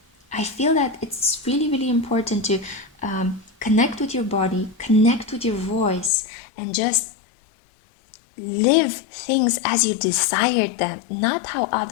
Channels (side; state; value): right; drops out; at 6.1 s